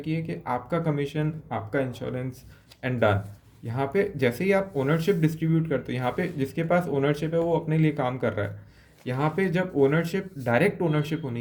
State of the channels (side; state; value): both; identical; correlation 1.00